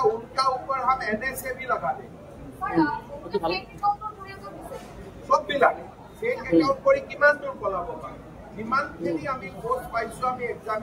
उनका ऊपर हम NSA भी लगा देंगे। सब मिलाके फेक एकाउंट কৰি কিমান দূৰ পলাব পাৰে, সিমানখিনি আমি পোষ্ট পাইছো, আমি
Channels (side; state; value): both; identical; correlation 1.00